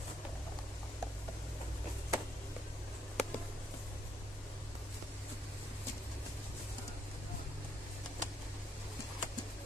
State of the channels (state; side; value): normal; both; correlation 0.73